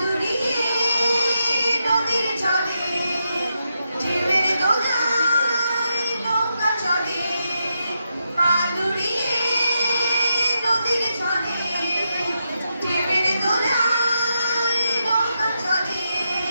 নদীর জলে ঢেউয়ের দোলায় নৌকা চলে, পাদুরিয়ে নদীর জলে ঢেউয়ের দোলায় নৌকা চলে।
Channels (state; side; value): inverted; both; correlation -0.84